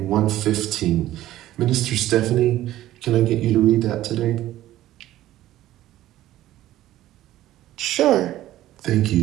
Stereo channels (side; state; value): left; quieter; 14.3 dB